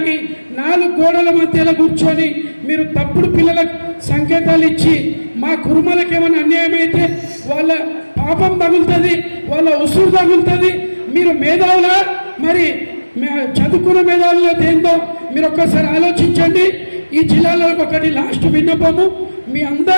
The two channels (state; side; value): inverted; both; correlation -1.00